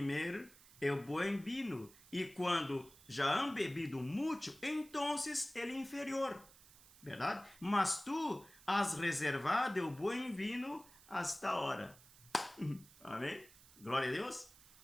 o bom vinho, e quando já han bebido muito, então ele é inferior, verdade? Mas tu has reservado o bom vinho hasta ahora. Amém? Glória a Deus.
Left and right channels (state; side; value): noise; right; hiss, 22 dB below the sound